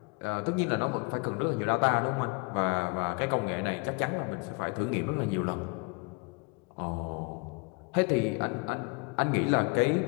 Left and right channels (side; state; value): right; quieter; 30.5 dB